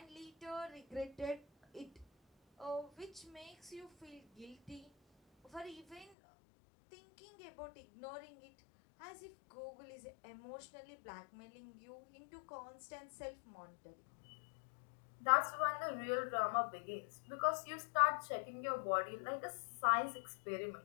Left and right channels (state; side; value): drops out; right; at 6.1 s